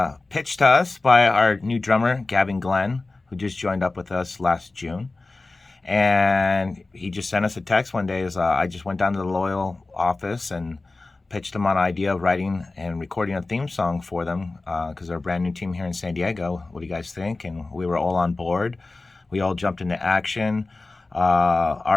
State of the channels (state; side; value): quieter; right; 3.4 dB